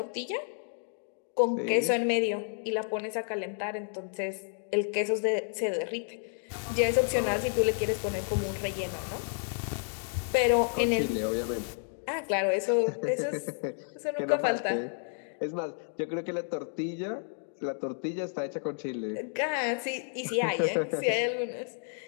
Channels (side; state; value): right; silent; 57 dB below the other